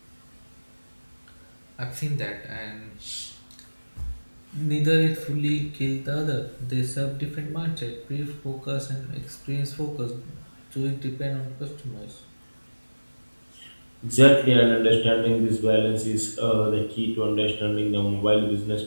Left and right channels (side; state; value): both; inverted; correlation -1.00